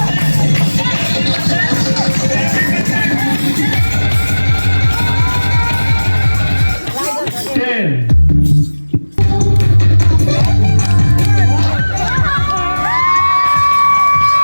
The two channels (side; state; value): both; inverted; correlation -1.00